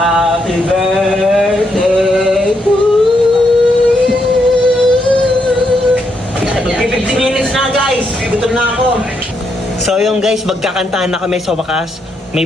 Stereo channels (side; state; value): both; normal; correlation 0.79